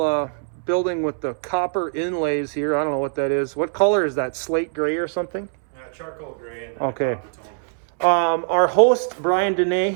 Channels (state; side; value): silent; left; digital silence